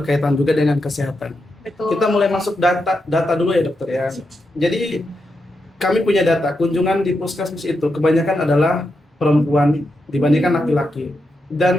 juga dengan kesehatan. Betul. Kita mulai masuk data dulu ya dokter ya. Jadi kami punya data kunjungan di puskesmas itu kebanyakan adalah perempuan dibandingkan laki-laki.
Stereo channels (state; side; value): normal; both; correlation 0.85